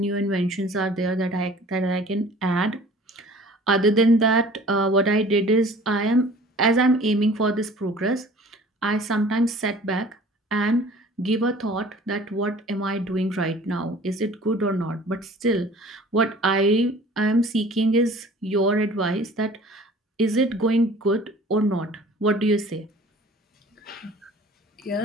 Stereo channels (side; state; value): both; normal; correlation 0.48